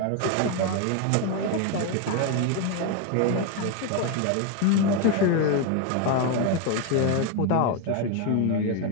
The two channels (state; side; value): different; both; correlation 0.01